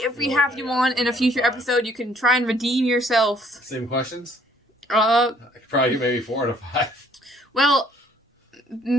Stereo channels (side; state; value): both; normal; correlation 0.62